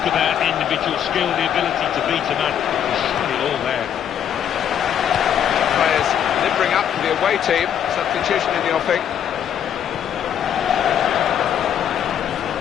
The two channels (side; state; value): right; quieter; 9.3 dB